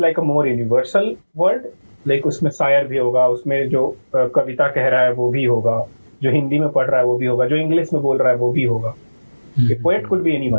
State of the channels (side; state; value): both; inverted; correlation -1.00